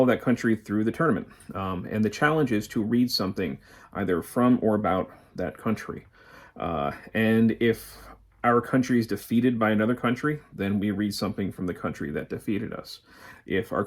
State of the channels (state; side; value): identical; both; correlation 1.00